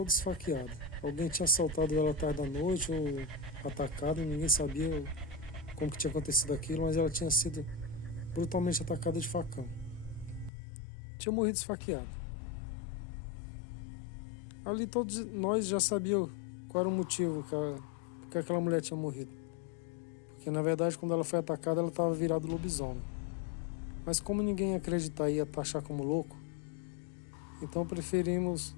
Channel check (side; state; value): right; drops out; at 10.5 s